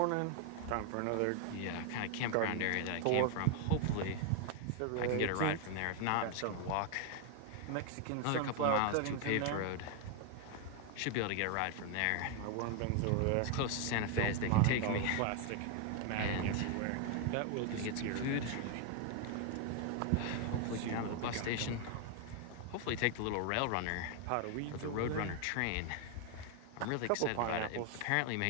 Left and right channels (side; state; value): both; different; correlation 0.00